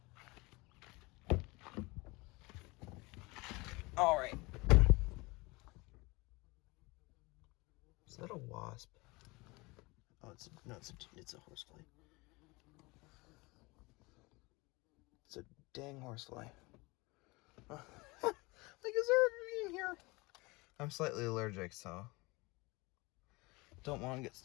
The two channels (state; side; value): quieter; right; 24.4 dB